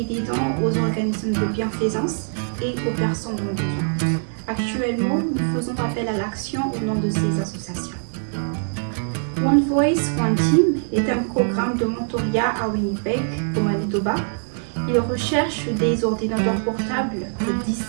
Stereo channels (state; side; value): silent; left; digital silence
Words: des dons aux organismes de bienfaisance et aux personnes en besoin. Actuellement, nous faisons appel à l'action au nom de ces associations. One Voice, One Team est un programme de mentorat à Winnipeg, au Manitoba. Il recherche des ordinateurs portables de 10